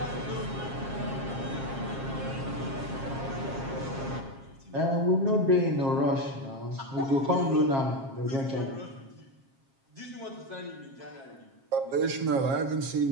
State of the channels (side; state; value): left; late; 7.4 ms